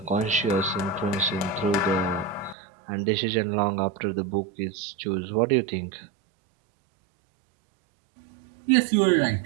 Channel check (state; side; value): drops out; left; at 2.6 s